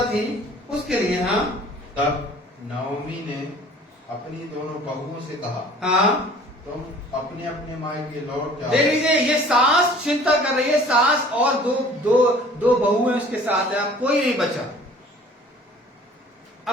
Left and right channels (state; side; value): normal; both; correlation 0.50